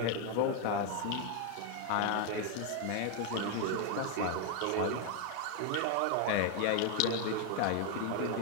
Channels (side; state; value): both; different; correlation 0.01